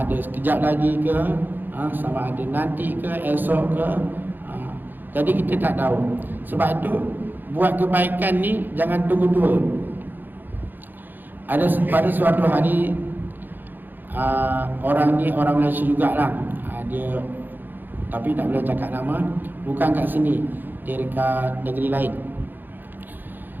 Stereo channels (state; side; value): late; left; 0.090 ms